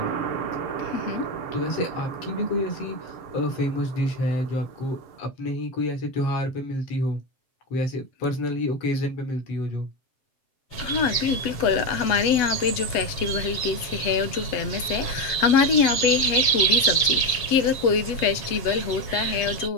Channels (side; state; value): right; late; 7.5 ms